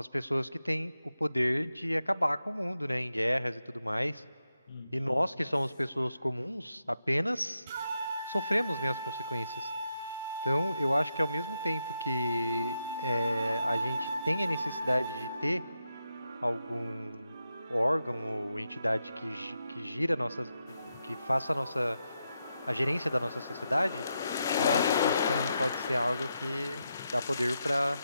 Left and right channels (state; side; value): inverted; both; correlation -0.85